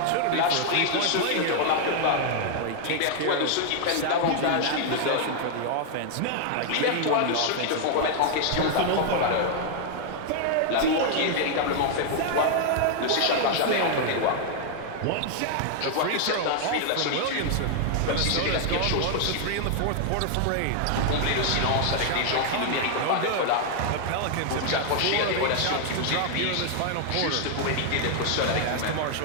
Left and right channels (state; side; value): different; both; correlation 0.00